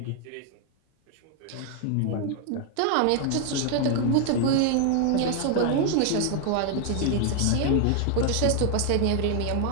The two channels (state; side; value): different; both; correlation 0.00